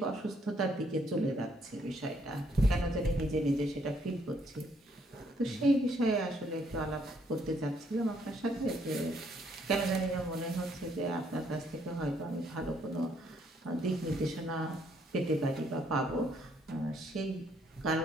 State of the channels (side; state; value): both; normal; correlation 0.69